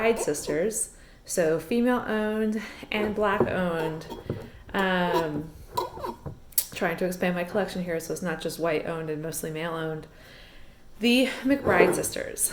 Sisters. So female owned and black owned. Um, Trying to expand my collection here, so it's not just white owned and mostly male owned. The McBride Sisters.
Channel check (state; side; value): identical; both; correlation 1.00